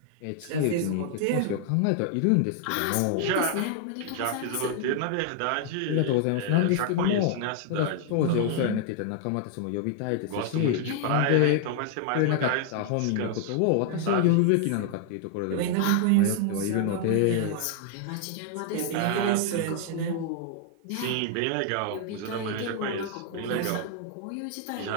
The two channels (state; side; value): different; both; correlation 0.00